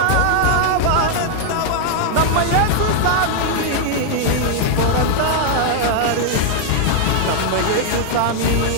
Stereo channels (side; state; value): both; different; correlation 0.00